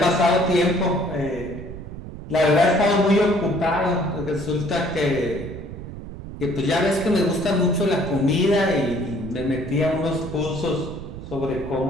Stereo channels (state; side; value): noise; right; rumble, 11 dB below the sound